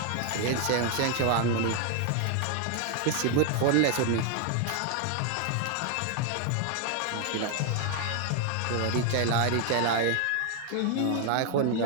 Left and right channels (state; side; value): different; both; correlation 0.00